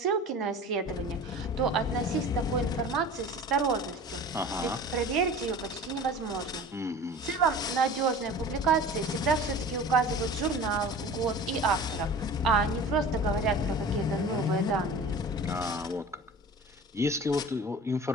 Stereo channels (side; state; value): both; normal; correlation 0.39